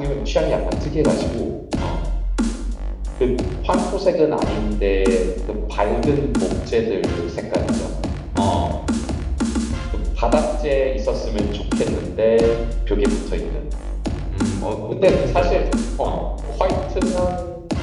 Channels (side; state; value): both; identical; correlation 1.00